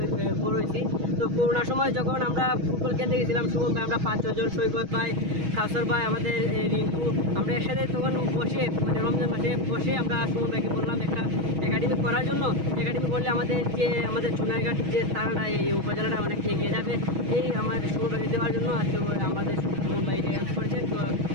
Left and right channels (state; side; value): late; left; 6.3 ms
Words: বড় হয়েছি। তো করোনার সময় যখন আমরা ফুটবল খেলতে গেছিলাম, সুমন ভাই, আমরা 5-6 জন, সৈকত ভাই, কাউসার ভাই, আমাদের রিঙ্কু, আমরা একসাথে তখন বসে, মানে রমজান মাসে বসে আমরা সুমন ভাইকে বললাম একটা একাডেমি করার জন্য। একাডেমি করলে আমাদের চুনারঘাট যে তারাটা, এই উপজেলাটা অনেক এগিয়ে যাবে, এই আমাদের সুমন ভাইকে দেওয়ার জন্য আজকে আমাদের সুমন ভাই এটা হেল্প করেছেন। তো